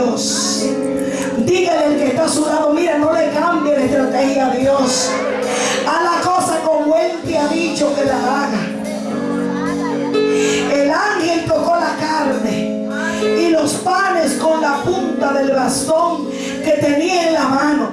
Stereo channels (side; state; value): both; identical; correlation 1.00